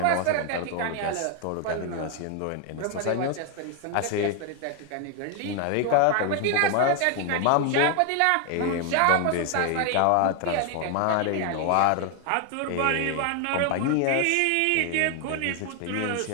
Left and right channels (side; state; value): both; different; correlation 0.01